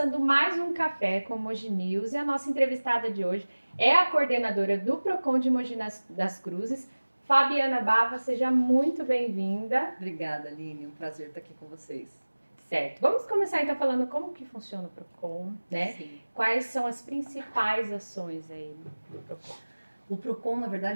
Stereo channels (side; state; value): both; inverted; correlation -1.00